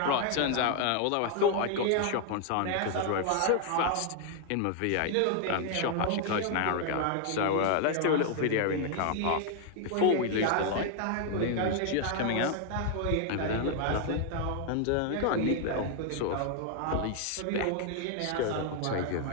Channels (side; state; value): both; different; correlation 0.00